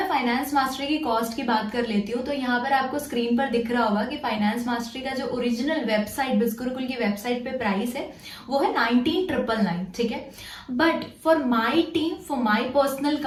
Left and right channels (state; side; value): identical; both; correlation 1.00